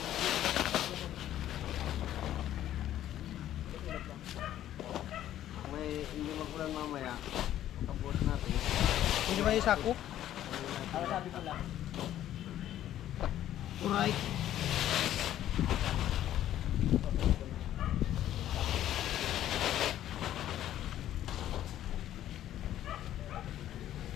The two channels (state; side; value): quieter; right; 12.2 dB